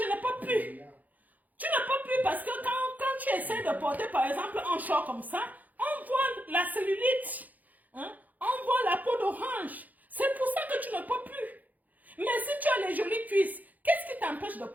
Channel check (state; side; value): late; left; 0.081 ms